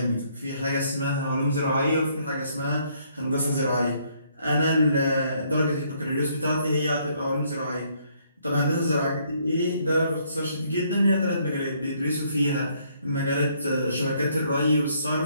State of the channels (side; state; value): both; inverted; correlation -0.68